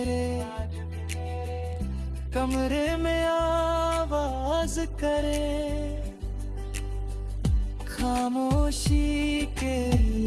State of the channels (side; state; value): both; identical; correlation 1.00